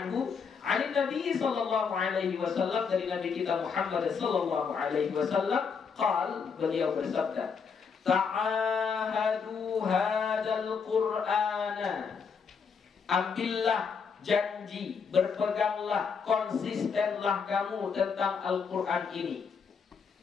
an Nabi sallallahu alaihi wasallam, dari Nabi kita Muhammad sallallahu alaihi wasallam, qal, beliau bersabda, ta'ahadu hadzal Qur'ana, ambillah janji, berpeganglah, konsistenlah kamu tentang Al-Quran ini.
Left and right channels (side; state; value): right; quieter; 5.9 dB